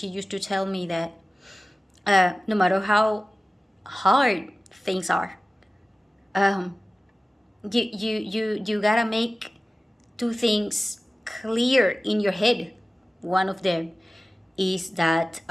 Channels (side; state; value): both; normal; correlation 0.96